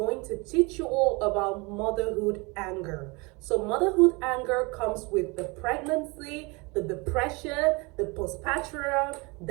to teach you all about motherhood anger. So motherhood anger comes with the pregnancy, the depression, the postpartum,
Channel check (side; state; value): left; quieter; 27.4 dB